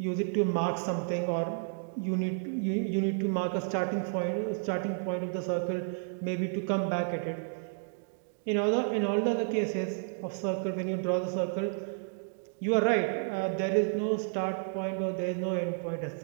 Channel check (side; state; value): left; silent; digital silence